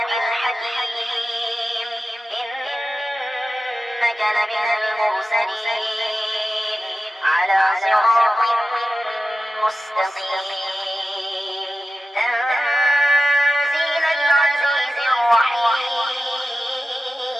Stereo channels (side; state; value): both; normal; correlation 0.93